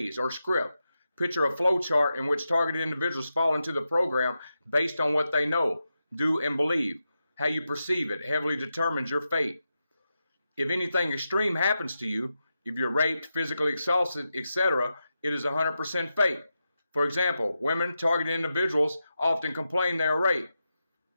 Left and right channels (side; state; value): both; inverted; correlation -0.89